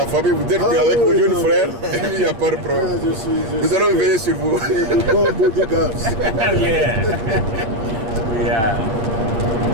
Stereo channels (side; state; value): left; late; 8.8 ms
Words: famille, vous êtes avec vos jeunes frères, il n'y a pas de problème. Nous allons veiller sur vous.